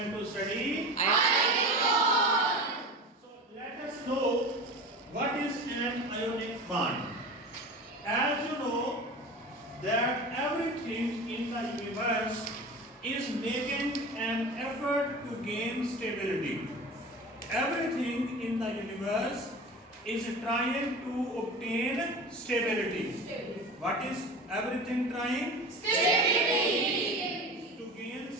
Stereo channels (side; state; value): both; normal; correlation 0.32